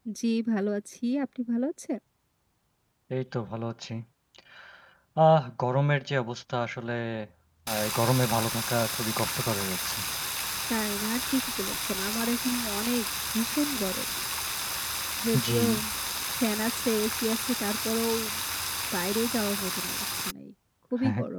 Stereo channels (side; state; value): both; identical; correlation 1.00